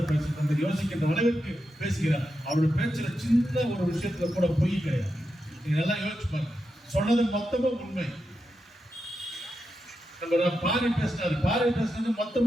பேசிட்டு யோசிக்கின்ற அளவுக்கு பேசுகிறார். அவருடைய பேச்சுல சின்ன ஒரு விஷயத்துல கூட பொய் கிடையாது. நீங்க எல்லாம் யோசிச்சு பாருங்க, சொன்னது மொத்தமும் உண்மை. நம்ம பாரி பேசினது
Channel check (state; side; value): normal; both; correlation 0.87